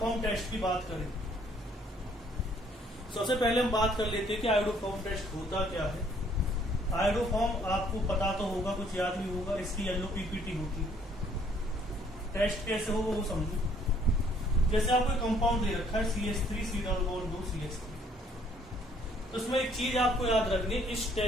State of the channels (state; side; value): normal; both; correlation 0.63